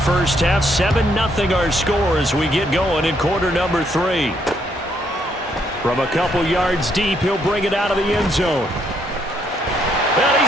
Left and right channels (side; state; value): both; normal; correlation 0.72